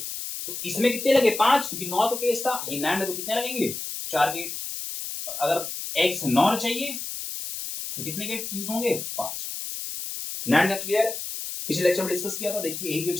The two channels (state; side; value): noise; left; hiss, 6 dB below the sound